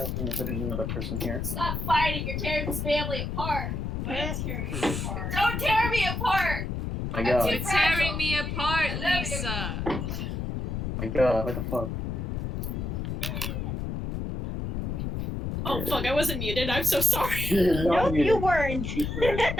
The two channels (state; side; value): noise; left; rumble, 3 dB below the sound